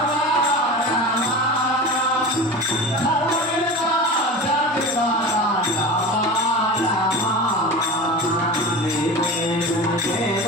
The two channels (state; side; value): normal; both; correlation 0.31